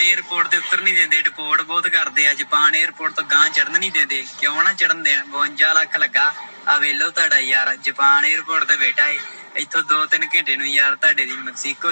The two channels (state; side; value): inverted; both; correlation -1.00